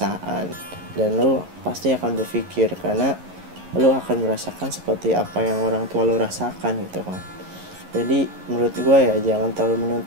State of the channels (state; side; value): late; left; 11 ms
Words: dan lu pasti akan berpikir karena lu akan merasakan seperti apa yang orang tua lu rasakan gitu kan. Jadi menurut gue ya jangan terlalu